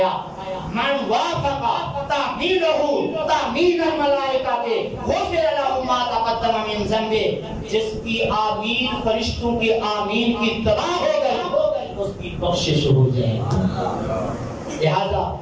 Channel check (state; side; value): identical; both; correlation 1.00